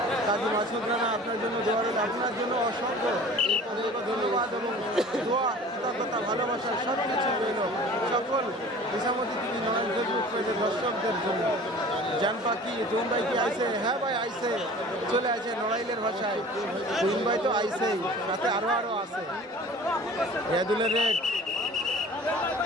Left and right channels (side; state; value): both; normal; correlation 0.43